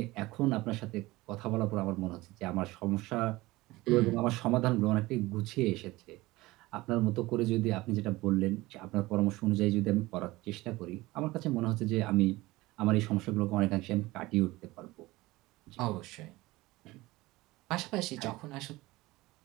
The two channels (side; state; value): left; quieter; 19.8 dB